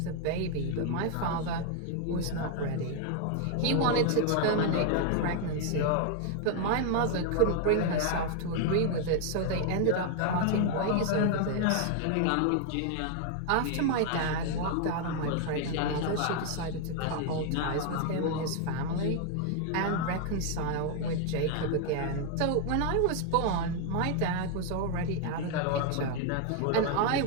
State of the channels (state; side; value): different; both; correlation 0.00